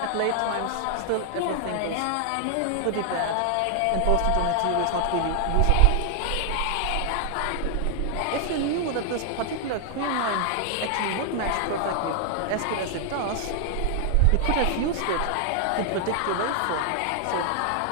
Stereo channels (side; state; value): both; different; correlation 0.00